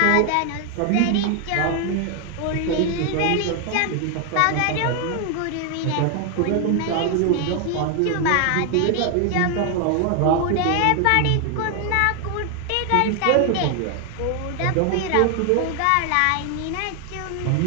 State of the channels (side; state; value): both; different; correlation 0.00